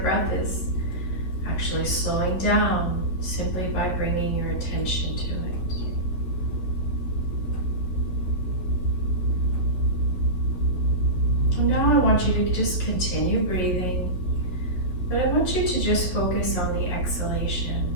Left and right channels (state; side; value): late; right; 11 ms